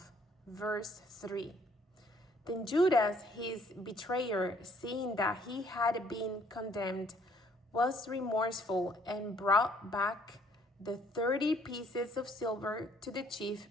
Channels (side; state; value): both; normal; correlation 0.63